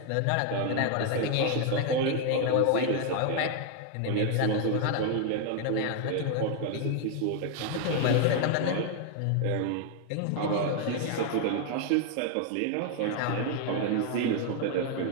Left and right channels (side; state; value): both; different; correlation 0.01